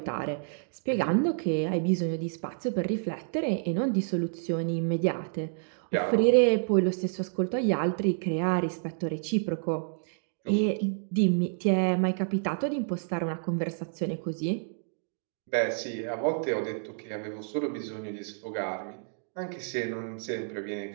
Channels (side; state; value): left; silent; digital silence